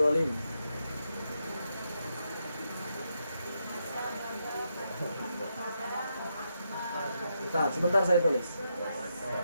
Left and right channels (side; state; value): both; inverted; correlation -0.82